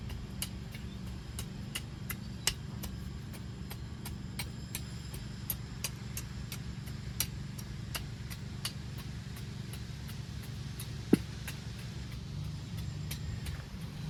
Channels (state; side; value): identical; both; correlation 1.00